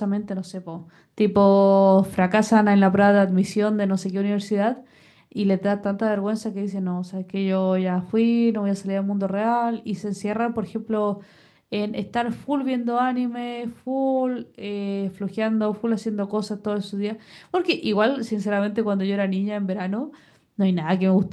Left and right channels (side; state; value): both; identical; correlation 1.00